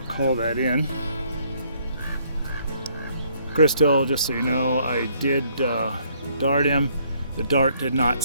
to call that in. Crystal, just so you know, I did dart him. The dart did not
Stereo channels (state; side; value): inverted; both; correlation -0.66